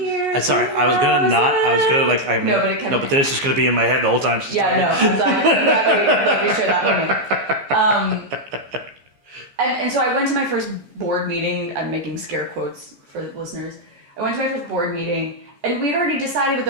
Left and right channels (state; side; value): late; left; 15 ms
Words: Sorry, I was gonna like, I mean, no, but then it's just gonna be in my head the whole time she's talking. And so I went to my first board meeting. I'm making scare quotes for the listeners. I went to my first board meeting, and we'd already decided what